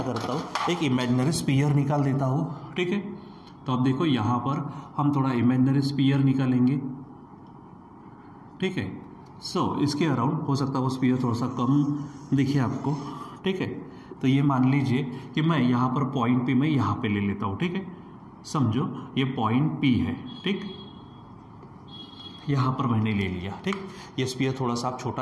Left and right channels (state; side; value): identical; both; correlation 1.00